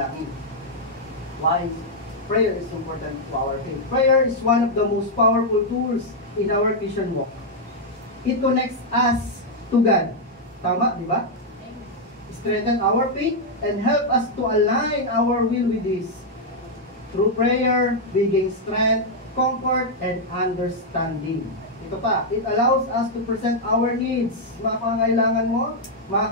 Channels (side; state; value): both; normal; correlation -0.02